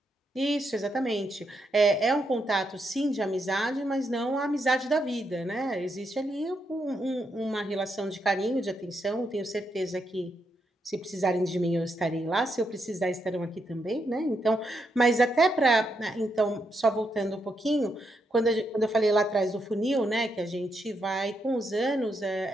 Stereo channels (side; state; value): both; normal; correlation 0.80